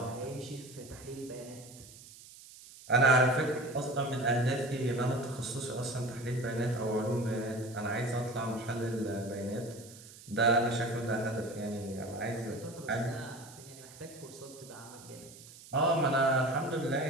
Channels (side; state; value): right; noise; hiss, 19 dB below the sound